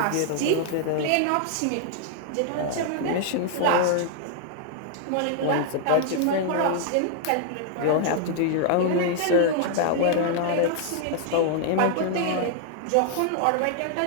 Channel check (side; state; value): both; different; correlation 0.00